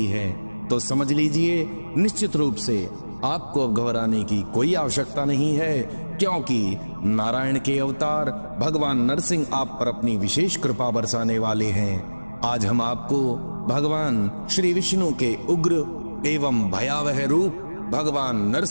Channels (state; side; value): inverted; both; correlation -1.00